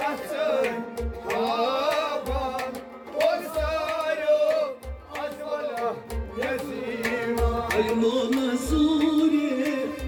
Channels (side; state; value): both; identical; correlation 1.00